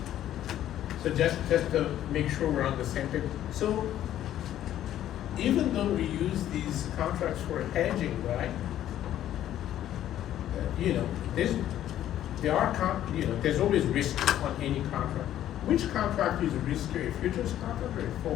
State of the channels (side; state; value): right; quieter; 12.0 dB